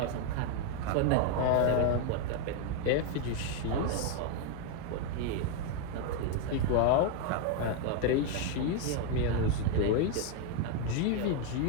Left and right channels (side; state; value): both; different; correlation 0.01